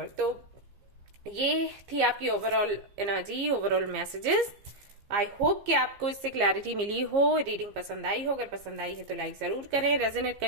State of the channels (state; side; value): late; left; 15 ms